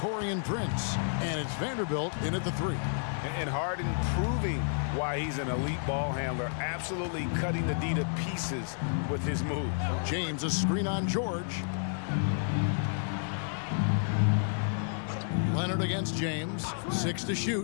Prince. And it's Vanderbilt in at the 3. And Harden proving why he's an elite ball handler, absolutely cutting the D to pieces with his move. James, a screen on George. Leonard against James. 6 to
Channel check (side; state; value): right; silent; digital silence